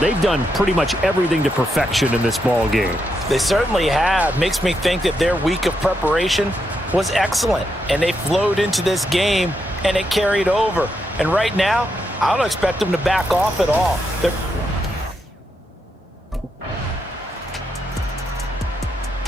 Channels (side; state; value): both; normal; correlation 0.82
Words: they've done pretty much everything to perfection in this ball game. They certainly have. Makes me think that their week of preparation was excellent. And they flowed into this game, and it carried over. And right now, I don't expect them to back off at all.